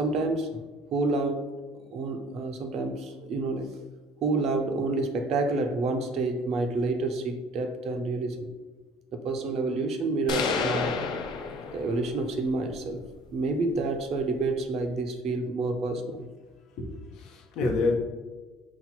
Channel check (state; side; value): normal; both; correlation 0.53